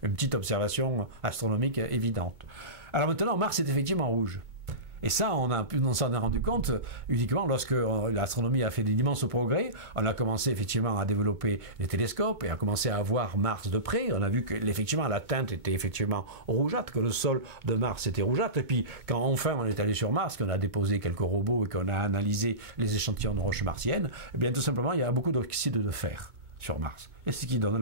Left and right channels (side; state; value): left; late; 2.2 ms